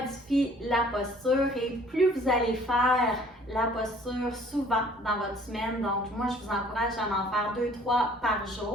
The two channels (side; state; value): both; normal; correlation 0.55